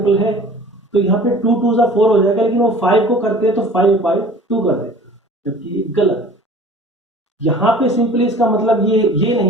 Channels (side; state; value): both; normal; correlation 0.45